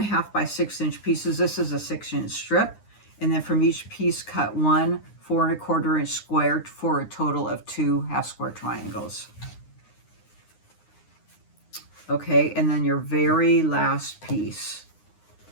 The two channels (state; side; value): late; right; 9.7 ms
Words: by 6 inch pieces. This is a 6 inch strip, and then from each piece cut 1 4 1/4 inch square for a total of 2 half square triangles. Okay, and then your very last piece.